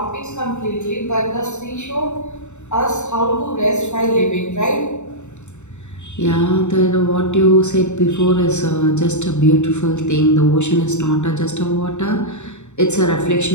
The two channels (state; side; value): late; right; 0.83 ms